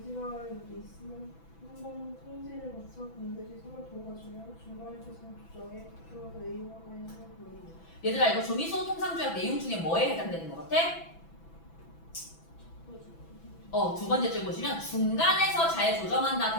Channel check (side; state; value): right; late; 6.0 ms